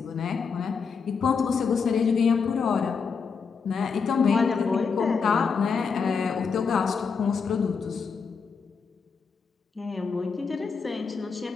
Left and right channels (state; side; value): quieter; right; 5.6 dB